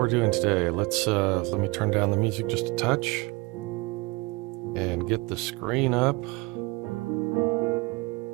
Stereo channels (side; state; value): left; quieter; 24.3 dB